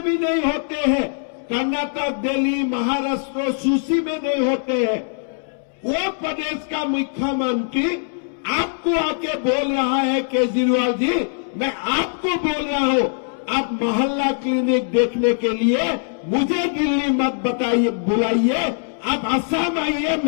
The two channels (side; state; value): right; silent; digital silence